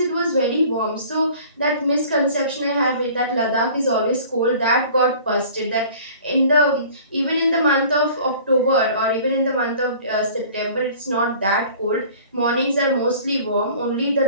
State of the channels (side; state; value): both; inverted; correlation -0.47